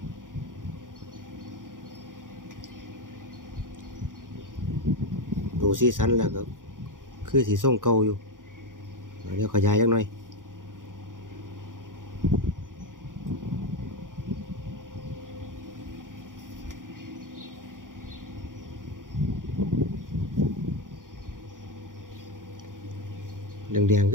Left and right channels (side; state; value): left; late; 0.89 ms